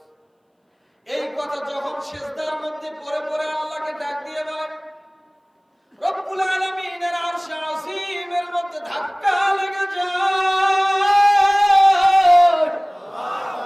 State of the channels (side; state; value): both; identical; correlation 1.00